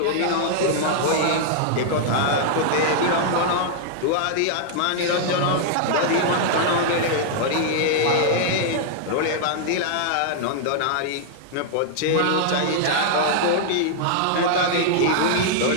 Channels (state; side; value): different; both; correlation -0.01